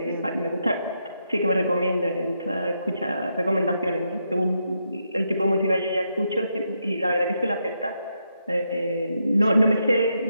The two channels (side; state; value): both; inverted; correlation -0.81